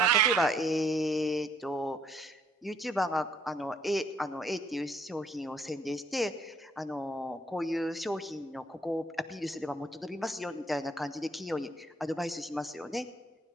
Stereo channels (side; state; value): both; normal; correlation 0.67